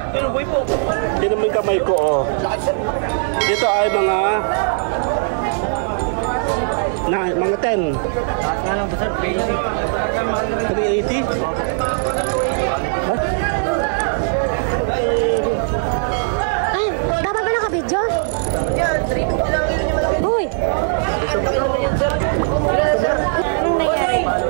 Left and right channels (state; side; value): silent; left; digital silence